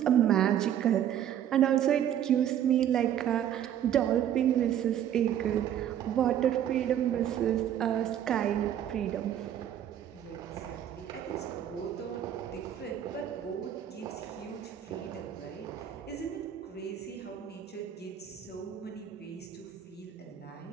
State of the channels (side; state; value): left; quieter; 10.3 dB